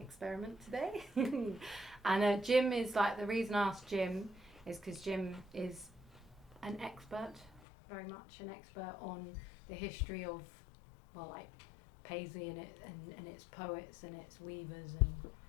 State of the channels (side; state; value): right; drops out; at 7.6 s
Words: today. And Jim is the reason I asked Jim is because Jim is an expert, very much an expert on the history of, Paisley and its poets and its weavers, and